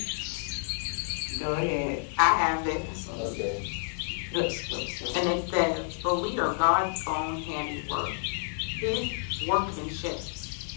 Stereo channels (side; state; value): right; silent; digital silence